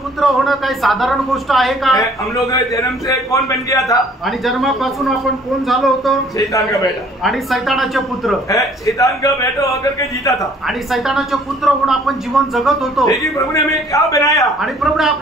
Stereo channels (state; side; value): normal; both; correlation 0.57